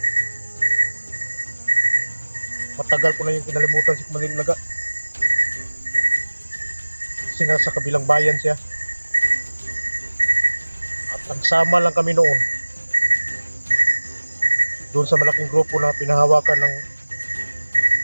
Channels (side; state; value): both; inverted; correlation -1.00